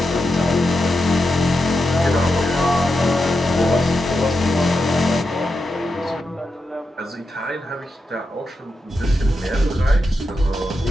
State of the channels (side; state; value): both; normal; correlation 0.87